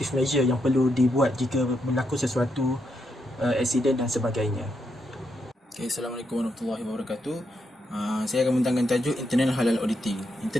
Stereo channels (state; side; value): normal; both; correlation 0.80